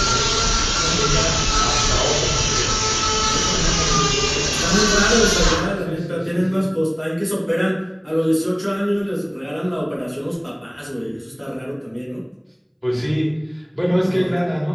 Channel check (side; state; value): both; identical; correlation 1.00